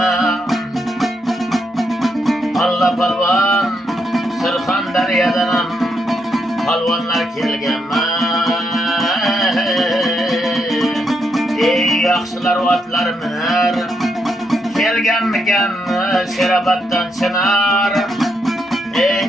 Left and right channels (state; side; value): normal; both; correlation 0.79